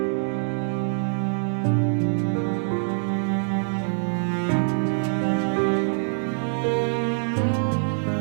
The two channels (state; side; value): silent; left; digital silence